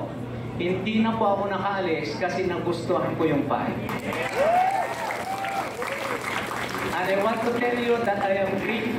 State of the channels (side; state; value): both; identical; correlation 1.00